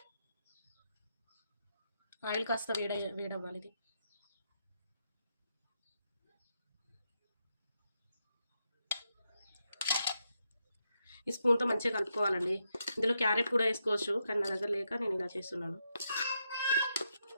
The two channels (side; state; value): both; inverted; correlation -0.82